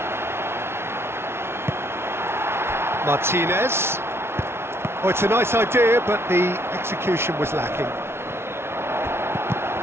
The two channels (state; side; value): late; left; 0.12 ms